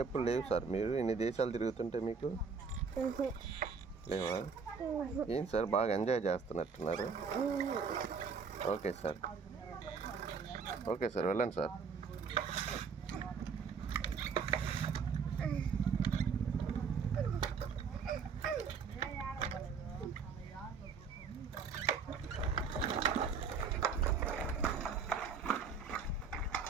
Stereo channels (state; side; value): quieter; left; 5.5 dB